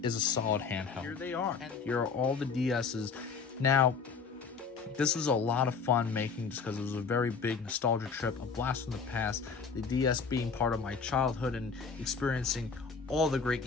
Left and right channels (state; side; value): quieter; right; 5.4 dB